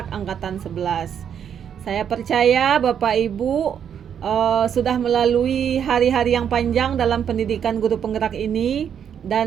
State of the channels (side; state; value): left; quieter; 8.4 dB